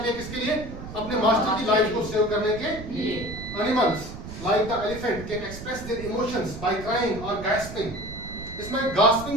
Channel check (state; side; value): noise; right; rumble, 11 dB below the sound